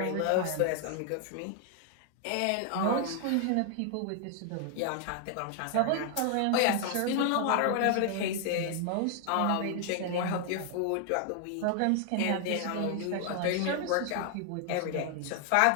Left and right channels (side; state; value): both; different; correlation 0.00